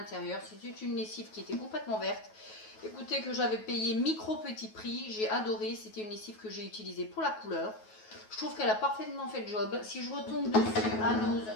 C'était une lessive qui était complètement verte. Écoutez, que j'avais payé micro petit prix. J'ai adoré. C'était une lessive que j'ai utilisée pour la couleur. Je trouve qu'elle a parfaitement fait le job. Si je retombe dessus à Nose,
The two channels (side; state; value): right; late; 9.3 ms